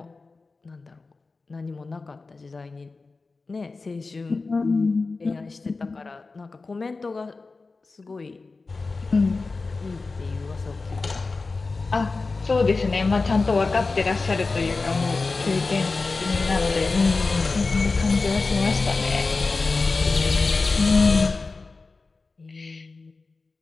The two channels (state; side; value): quieter; right; 3.9 dB